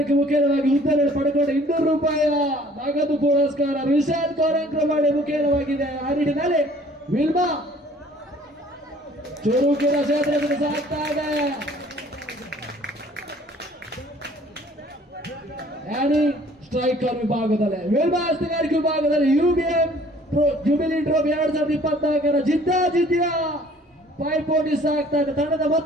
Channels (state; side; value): normal; both; correlation 0.55